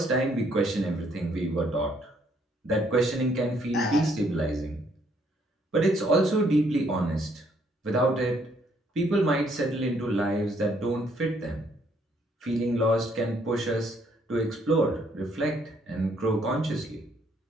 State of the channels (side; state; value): both; normal; correlation 0.68